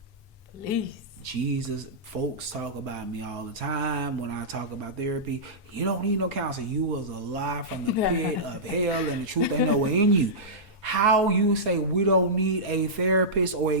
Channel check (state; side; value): normal; both; correlation -0.15